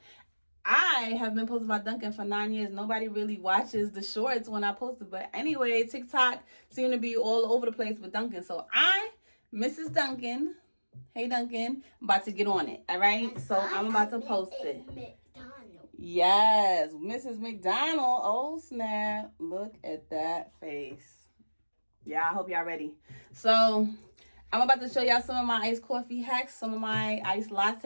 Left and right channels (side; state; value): both; inverted; correlation -1.00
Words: I have been posting about Dunkin' for 9 years. Nobody really watches the shorts when I post it. But anyway, TikTok seemed to be all over the place with Dunkin'. So Mrs. Dunkin', hey Dunkin', I'm about to get on it. All right, so I'm about to post it. Yes, Mrs. McDonald. Oh snap! Look at that face. Yeah, I hope y'all ready. So I'm about to show y'all some of my iced coffee hacks, some of my iced